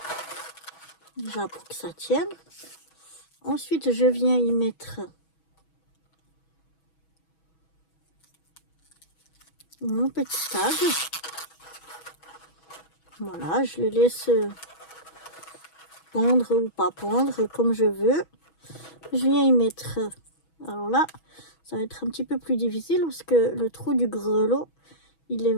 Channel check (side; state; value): right; late; 6.2 ms